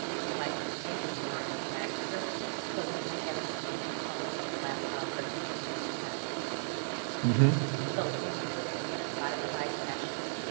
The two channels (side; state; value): left; silent; digital silence